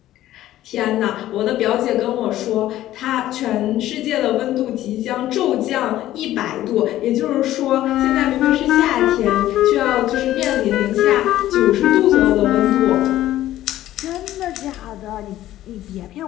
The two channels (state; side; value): quieter; right; 13.9 dB